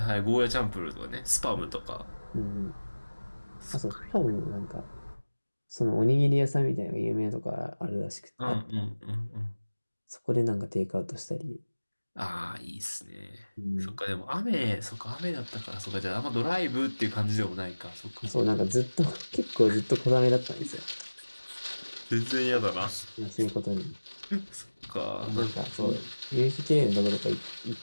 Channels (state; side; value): inverted; both; correlation -1.00